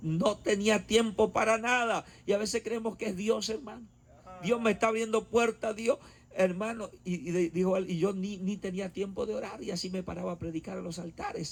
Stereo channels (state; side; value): identical; both; correlation 1.00